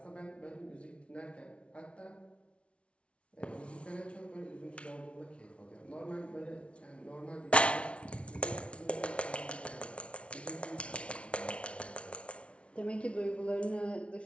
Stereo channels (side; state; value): right; late; 0.060 ms